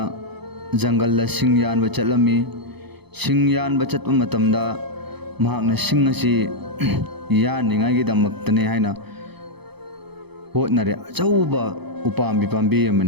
जंगल सिंग यानबा चलमी सिंग यानबा चतपा मतमदा महागना सिंग असे यानिंगाइगिदमक्तने हाइना होटनरे अचौबा उपाम्बी पाम्बी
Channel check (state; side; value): late; left; 0.98 ms